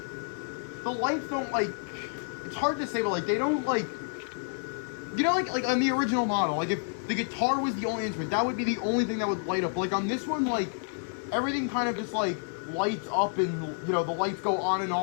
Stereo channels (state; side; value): silent; right; digital silence